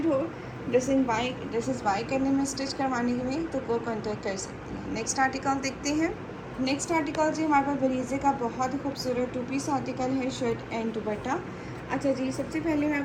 हो ड्रेसेस बाय करने में, स्टिच करवाने में, तो वो कॉन्टेक्ट कर सकती हैं। नेक्स्ट आर्टिकल देखते हैं। नेक्स्ट आर्टिकल जी हमारे पास बरीज़े का बहुत ही खूबसूरत 2 पीस आर्टिकल है, शर्ट एंड दुपट्टा। अच्छा जी, सबसे पहले मैं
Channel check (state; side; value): identical; both; correlation 1.00